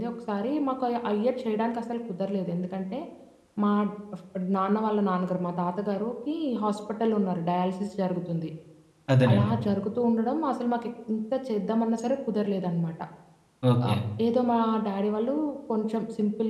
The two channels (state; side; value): identical; both; correlation 1.00